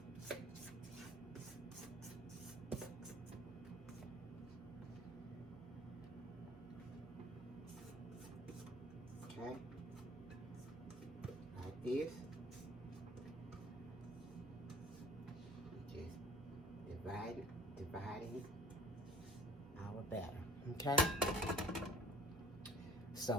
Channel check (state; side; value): noise; right; hum, 18 dB below the sound